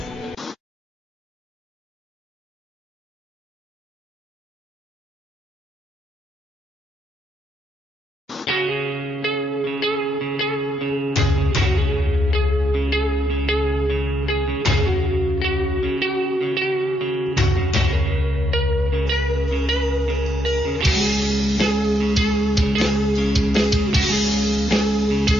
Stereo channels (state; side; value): normal; both; correlation 0.77